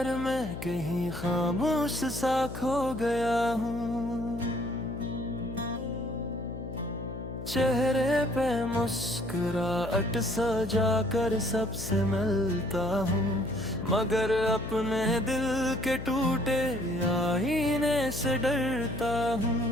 में कहीं खामोश सा खो गया हूँ। चेहरे पे मुस्कुराहट सजा कर सबसे मिलता हूँ, मगर अपने दिल के टूटे आईने से डरता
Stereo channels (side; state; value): left; noise; hum, 9 dB below the sound